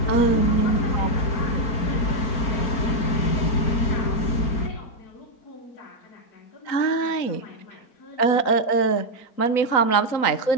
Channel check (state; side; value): late; right; 3.9 ms